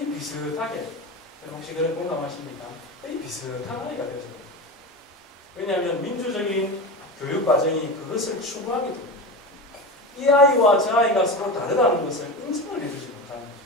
비슷하게, 혹시 그런 공감하십니까? 거의 비슷한 아이가 되어져요. 왜냐하면 민주적인 교육 과정이 그것을 추구하게 됩니다. 이 아이와 저 아이가 서로 다르다는 것을 인정을 해주지 못하는 거죠.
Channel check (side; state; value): both; normal; correlation 0.25